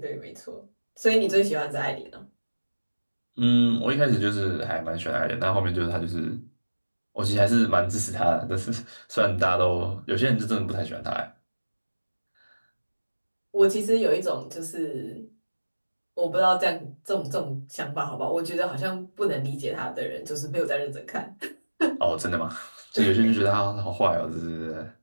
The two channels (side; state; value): both; inverted; correlation -1.00